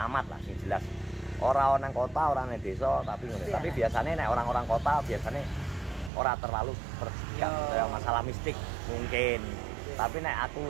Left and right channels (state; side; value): drops out; left; at 6.1 s